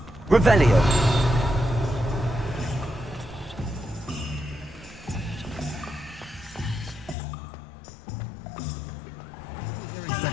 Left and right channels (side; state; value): right; drops out; at 7.2 s